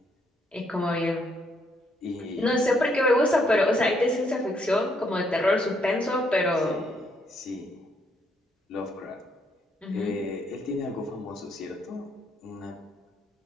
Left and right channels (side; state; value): both; normal; correlation 0.72